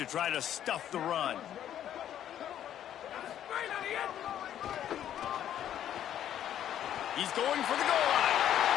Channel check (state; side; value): quieter; right; 10.8 dB